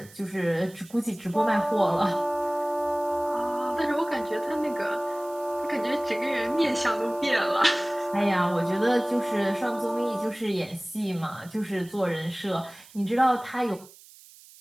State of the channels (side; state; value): right; noise; hiss, 22 dB below the sound